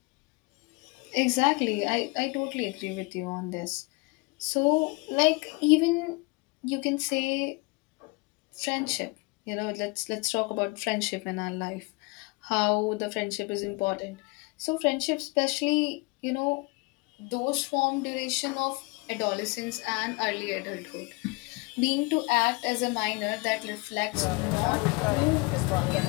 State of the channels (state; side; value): quieter; right; 27.6 dB